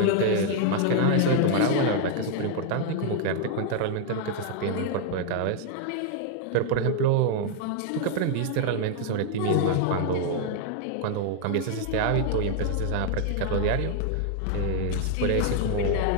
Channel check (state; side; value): different; both; correlation 0.00